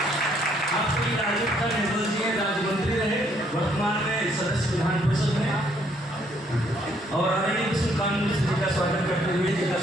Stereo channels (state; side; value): normal; both; correlation 0.68